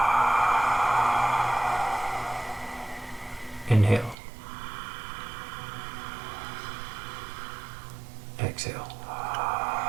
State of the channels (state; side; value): drops out; left; at 4.2 s